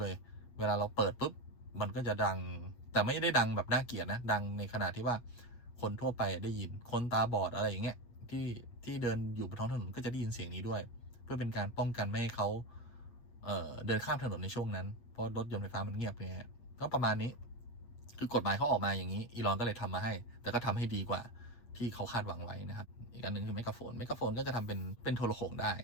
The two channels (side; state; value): right; late; 8.5 ms